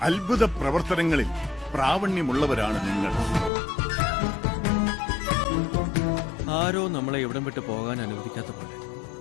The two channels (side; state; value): right; drops out; at 3.5 s